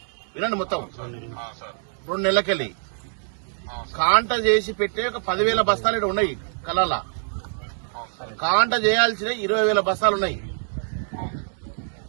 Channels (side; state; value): left; silent; digital silence